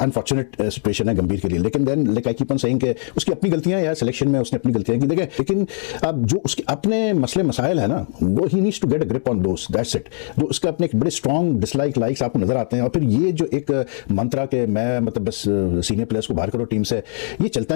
अनफॉर्चुनेट सिचुएशन है गंभीर के लिए। लेकिन then like I keep on saying कि उसकी अपनी गलतियां यार, सिलेक्शन में उसने अपनी गलतियां की, देखें। लेकिन अब जो उसके अपने मसले मसाइल है ना, वो ही needs to get a grip on those, that's it. जो उसके अपने एक बड़े स्ट्रॉन्ग डिसलाइक लाइक्स आपको नजर आते हैं, और फिर ये जो एक मंत्रा के मैं मतलब बस सीनियर प्लेयर्स को बाहर करो टीम से, ये चलता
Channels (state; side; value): silent; right; digital silence